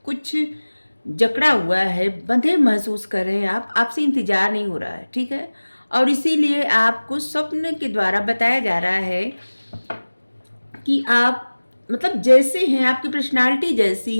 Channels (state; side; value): inverted; both; correlation -1.00